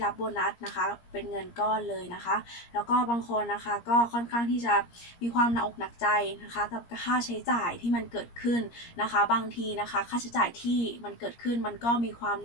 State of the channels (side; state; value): right; late; 17 ms